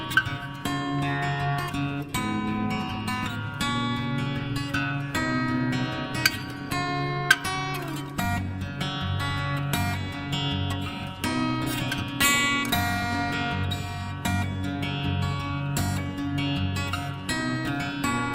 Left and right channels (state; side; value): identical; both; correlation 1.00